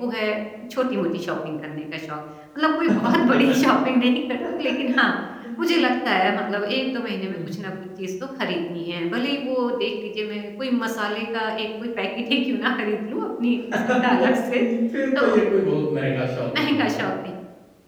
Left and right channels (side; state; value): both; identical; correlation 1.00